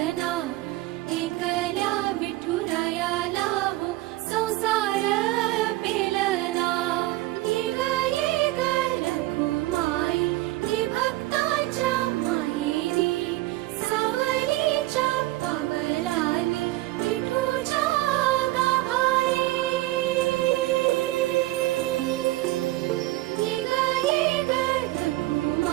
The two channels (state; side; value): quieter; left; 18.2 dB